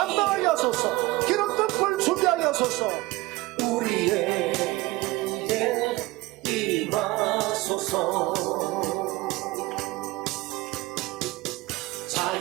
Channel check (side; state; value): left; quieter; 20.8 dB